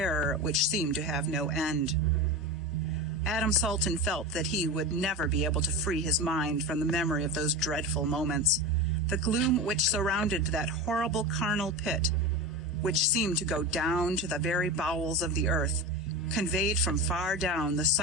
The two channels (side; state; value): both; normal; correlation 0.24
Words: which seemed to have no end. Adam Salton felt that he would never be able to free his mind from the memory of those dreadful moments. The gloom which surrounded that horrible carnal pit, which seemed to go down to the very bowels of the earth, conveyed from far down the